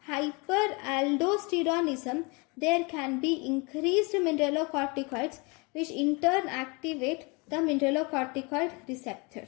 hyperaldosteronism, there can be increased mineralocorticoids which in turn activate the mineralocorticoid receptor.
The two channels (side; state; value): right; quieter; 29.4 dB